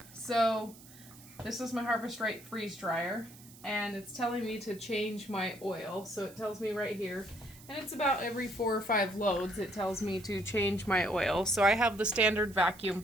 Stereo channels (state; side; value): noise; right; hiss, 21 dB below the sound